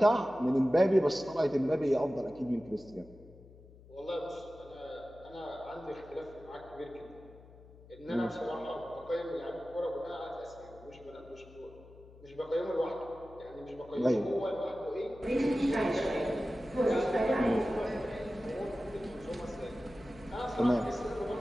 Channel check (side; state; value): left; noise; hum, 21 dB below the sound